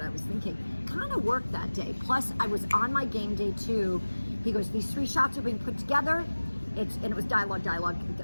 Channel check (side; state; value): both; inverted; correlation -1.00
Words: I was thinking. Kind of worked that day. Plus, I was on my game day too. He goes, these 3 shots are being put together. And it was dialogue